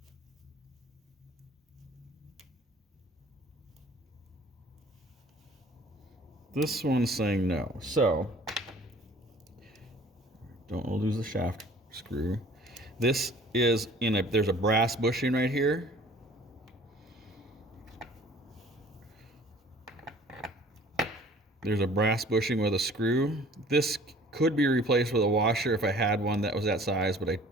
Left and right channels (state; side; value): normal; both; correlation 0.50